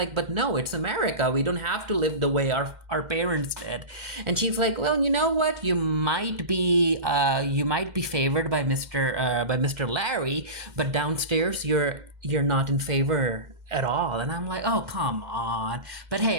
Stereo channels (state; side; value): late; left; 2.1 ms